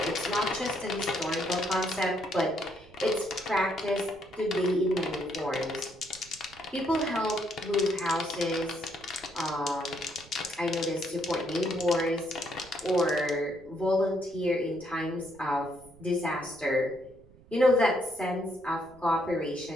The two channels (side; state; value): right; noise; rumble, 24 dB below the sound